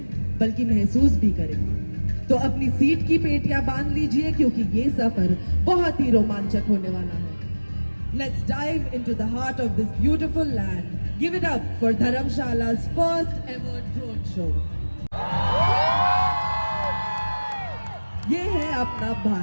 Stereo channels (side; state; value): both; inverted; correlation -1.00